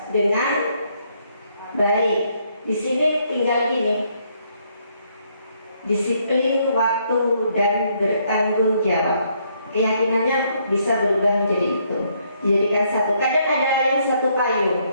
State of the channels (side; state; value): both; inverted; correlation -0.71